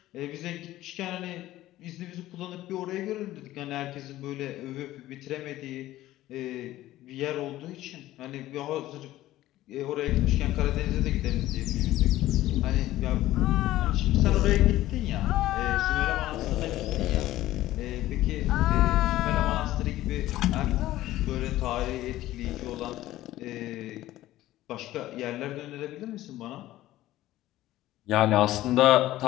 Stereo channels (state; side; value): quieter; right; 15.2 dB